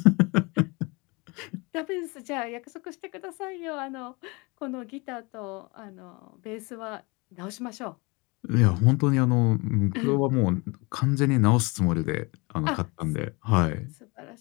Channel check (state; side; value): quieter; right; 27.2 dB